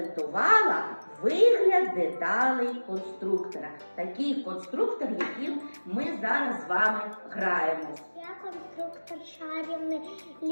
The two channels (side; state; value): both; inverted; correlation -1.00